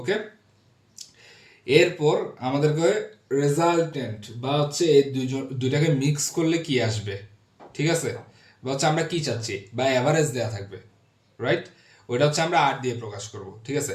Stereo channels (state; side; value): identical; both; correlation 1.00